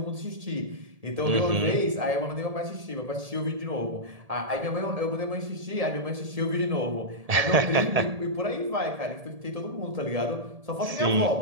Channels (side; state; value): left; late; 1.7 ms